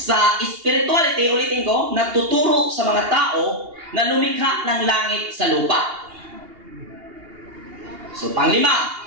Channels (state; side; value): late; left; 2.8 ms